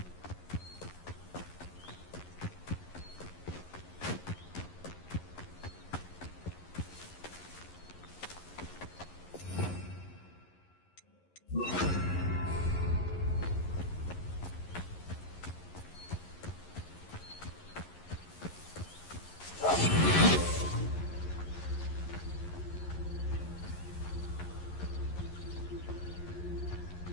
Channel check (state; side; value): late; right; 11 ms